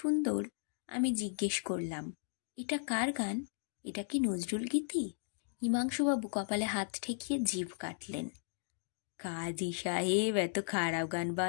আমি জিজ্ঞেস করলাম, এটা কার গান? এটা কি নজরুল গীতি? হিমাংশুবাবু কপালে হাত ঠেকিয়ে জিভ কাটলেন। কাজী সাহেব এত খারাপ গান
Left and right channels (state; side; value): silent; right; digital silence